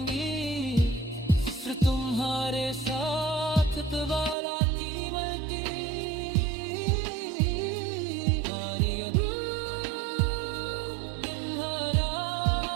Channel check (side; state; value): left; drops out; at 4.4 s